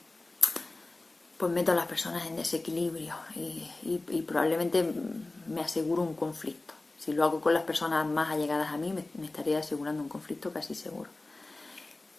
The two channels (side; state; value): right; quieter; 3.0 dB